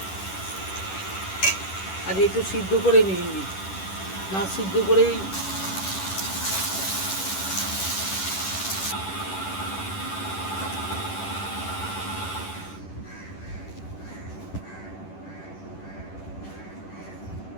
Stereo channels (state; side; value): late; right; 10 ms